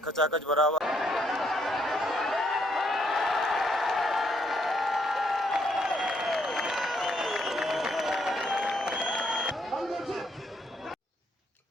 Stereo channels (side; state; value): both; normal; correlation 0.73